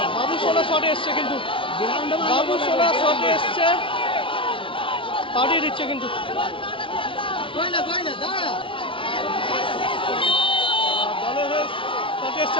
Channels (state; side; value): late; right; 0.25 ms